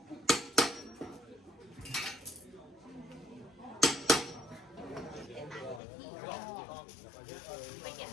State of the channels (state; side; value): drops out; right; at 5.8 s